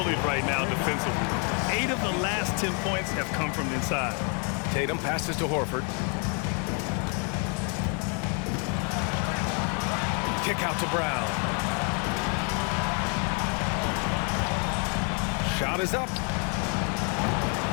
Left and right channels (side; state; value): right; quieter; 38.3 dB